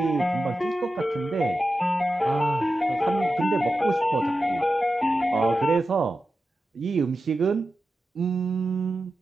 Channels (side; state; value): both; normal; correlation 0.92